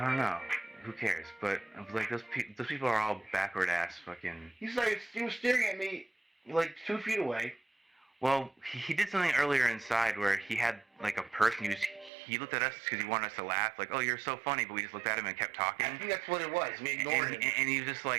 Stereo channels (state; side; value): drops out; left; at 12.1 s